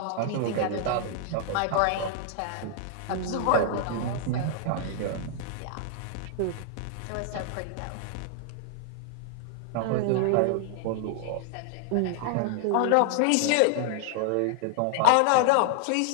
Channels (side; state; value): both; different; correlation 0.00